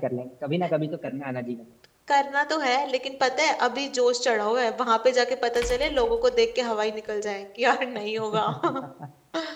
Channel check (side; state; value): both; identical; correlation 1.00